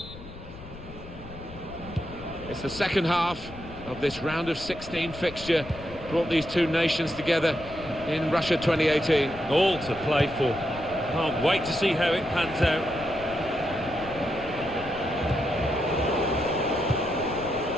It's the second half of this round of 16 fixture. Brought these two nations together in Russia 2018. All to play for. Can't wait to see how it pans out.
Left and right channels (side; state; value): left; noise; rumble, 15 dB below the sound